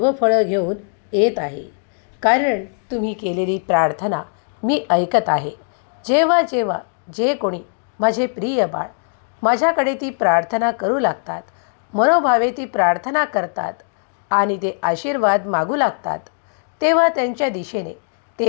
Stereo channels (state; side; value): silent; right; digital silence